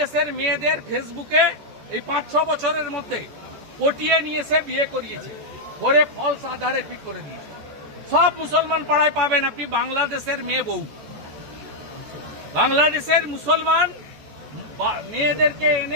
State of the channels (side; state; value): left; late; 14 ms